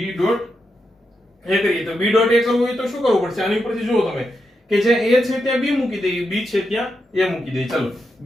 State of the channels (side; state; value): both; normal; correlation 0.85